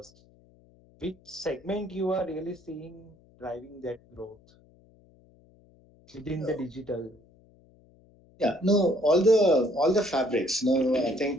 which segment you are really seeing driving that growth within the digital? Yeah, no, all the fabrics. No, I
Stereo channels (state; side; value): noise; left; hum, 29 dB below the sound